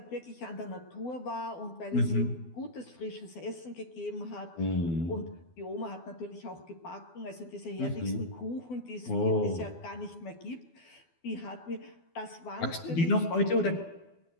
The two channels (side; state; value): right; late; 12 ms